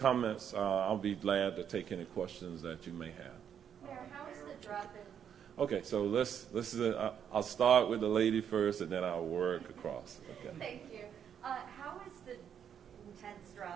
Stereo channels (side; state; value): left; quieter; 8.5 dB